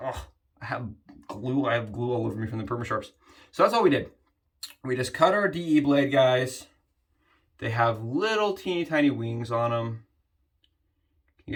Oh, I have glue all over me from the Permasharps. So that's all we did. We just cut our DE blade, guys. They have little teeny tiny wings on them. Can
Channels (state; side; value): identical; both; correlation 1.00